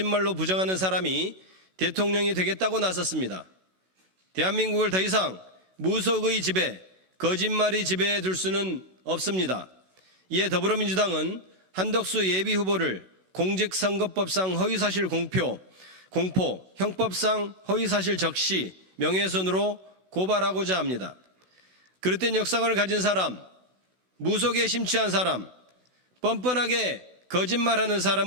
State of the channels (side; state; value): left; late; 16 ms